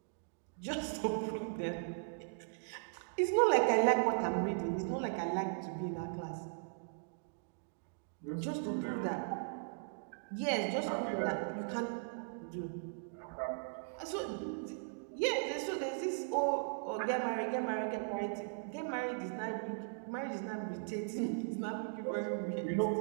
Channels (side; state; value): left; silent; digital silence